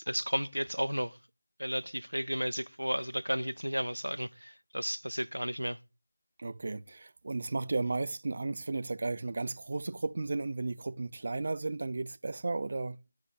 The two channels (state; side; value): inverted; both; correlation -0.99